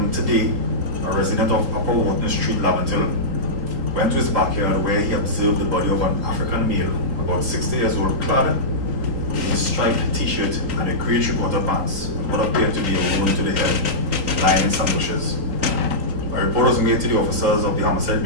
today, a resident of Upper Wharton Street, Laventille, went to his backyard where he observed the body of an African male, about 60 years old, clad in a striped t-shirt and a grey three-quarter pants, what appeared to be a wound to the head, lying in some bushes. A report was made to the officers of the Homicide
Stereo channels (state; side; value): late; left; 3.8 ms